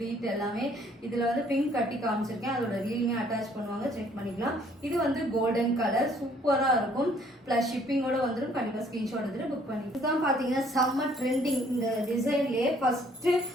எல்லாமே. இதுல வந்து பிங்க் கட்டி காமிச்சிருக்கேன். அதோட ரீலுமே அட்டாச் பண்ணுவாங்க, செக் பண்ணிக்கலாம். இது வந்து கோல்டன் கலர் சூப்பரா இருக்கும். பிளஸ் ஷிப்பிங்கோட வந்துடும். கண்டிப்பா ஸ்கிரீன்ஷாட் எடுத்துட்டு புக் பண்ணி. இதுதான் பாத்தீங்கன்னா செம்ம ட்ரெண்டிங். இந்த டிசைன்லயே ஃபர்ஸ்ட்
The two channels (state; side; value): normal; both; correlation 0.61